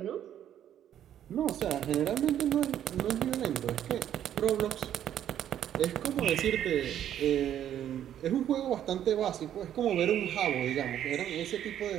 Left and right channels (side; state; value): left; quieter; 10.6 dB